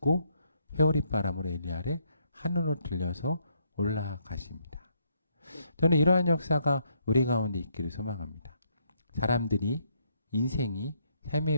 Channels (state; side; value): inverted; both; correlation -0.73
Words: 회오리바람으로 엘리야를 하늘로 들려서 올라가십니다. 저는 이러한 역사가 우리 가운데 있기를 소망합니다. 사람들이 인생이